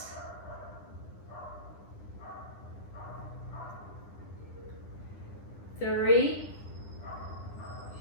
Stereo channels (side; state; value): right; late; 9.9 ms